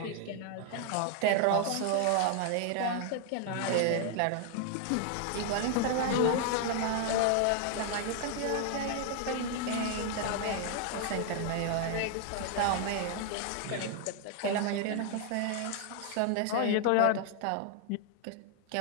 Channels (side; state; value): both; different; correlation 0.00